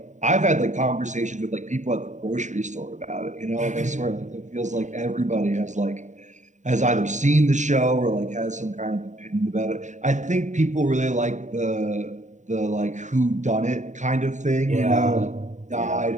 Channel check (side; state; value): left; late; 0.35 ms